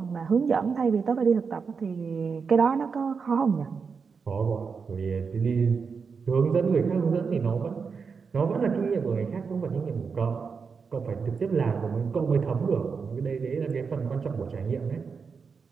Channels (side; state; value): left; quieter; 5.5 dB